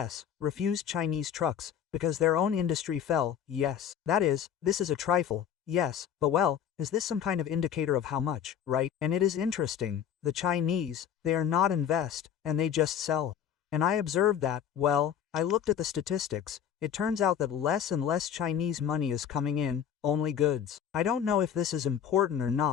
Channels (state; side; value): quieter; right; 9.0 dB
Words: refused Chinese trucks, because their own industry fell, yes. That is, this is a trifle, yes, but well, is this some kind of indicator of how much, right? And it is interesting, the Chinese, they are not invest, and they just sell. And I observed that, well, I looked at the statistics, it turns out that less and less Chinese money is coming in, only goods. I don't know if this is important or